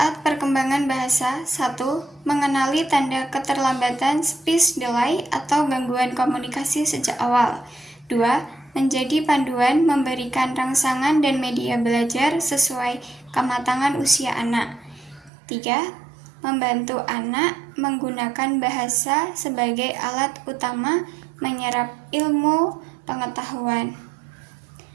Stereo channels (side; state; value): left; drops out; at 15.3 s